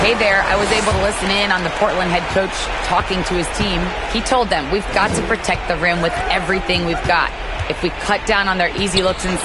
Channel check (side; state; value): both; identical; correlation 1.00